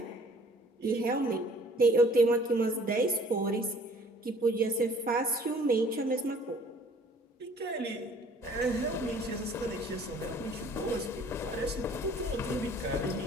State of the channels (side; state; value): both; normal; correlation 0.54